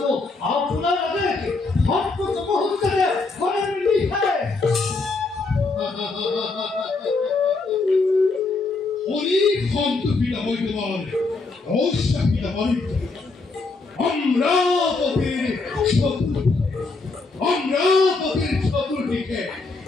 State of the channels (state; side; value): quieter; right; 3.8 dB